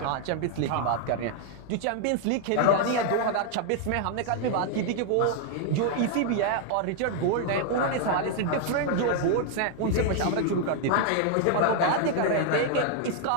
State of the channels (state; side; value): different; both; correlation 0.00